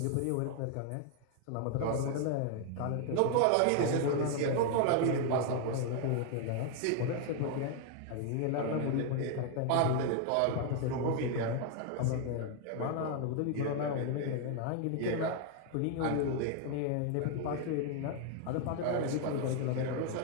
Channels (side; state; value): both; different; correlation 0.00